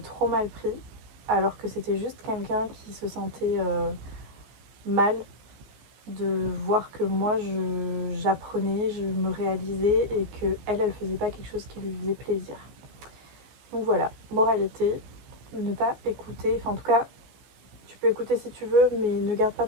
mal pris. Alors que c'était juste quelqu'un qui se sentait mal de voir que moi, j'apprenais, je me réalisais et que elle faisait pas quelque chose qui lui faisait plaisir. Donc voilà, moralité, ne pas écouter, enfin en tout cas, tu peux écouter si tu veux, mais ne garde pas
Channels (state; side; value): late; left; 14 ms